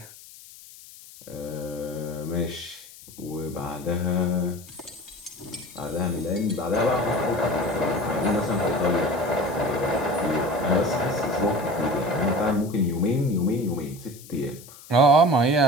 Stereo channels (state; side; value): noise; left; hiss, 19 dB below the sound